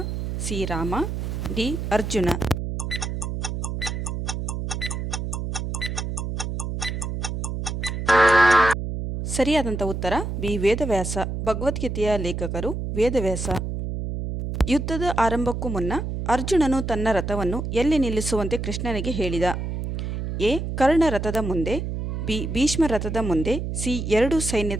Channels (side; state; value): right; noise; hum, 4 dB below the sound